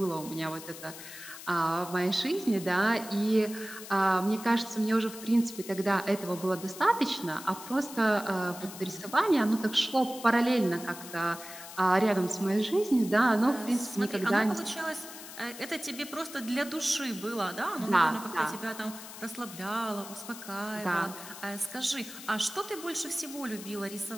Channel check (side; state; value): left; noise; hiss, 13 dB below the sound